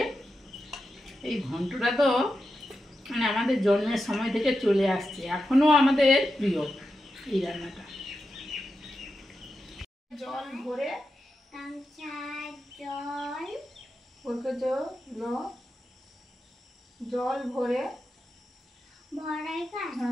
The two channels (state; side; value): normal; both; correlation 0.89